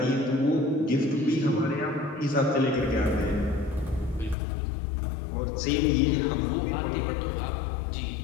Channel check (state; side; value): drops out; right; at 4.4 s